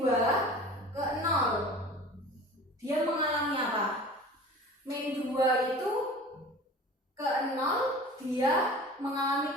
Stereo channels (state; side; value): normal; both; correlation 0.40